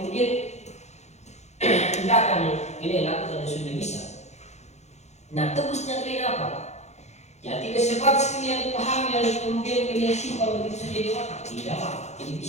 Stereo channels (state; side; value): late; right; 0.33 ms